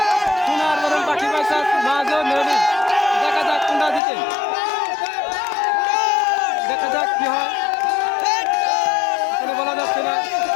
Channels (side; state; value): right; drops out; at 4.0 s